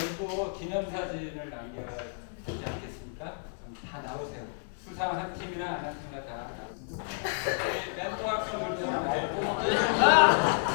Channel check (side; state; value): right; silent; 57 dB below the other